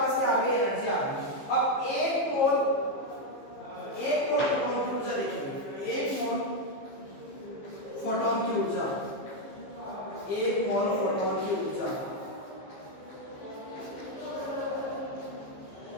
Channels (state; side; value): late; right; 15 ms